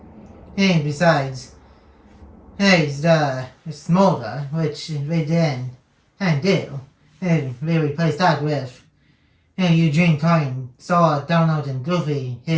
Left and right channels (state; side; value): identical; both; correlation 1.00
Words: And besides, the smolder, which they didn't do. And they replaced that with Eugene calling Sora, Donald, and Goofy